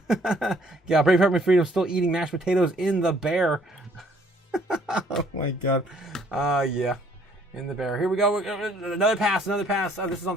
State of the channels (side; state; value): both; normal; correlation 0.62